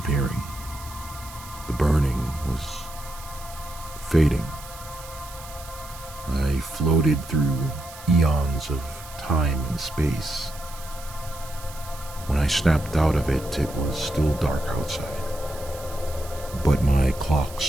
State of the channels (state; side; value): noise; right; hiss, 16 dB below the sound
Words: The burning was fading. I floated through eons of time and space. When I snapped out of it, it was still dark outside. But my